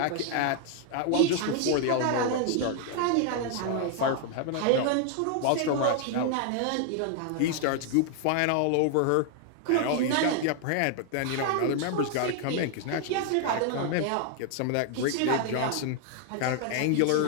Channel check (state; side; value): different; both; correlation 0.00